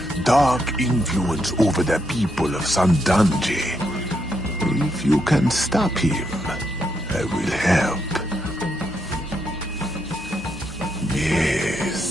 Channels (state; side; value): normal; both; correlation 0.79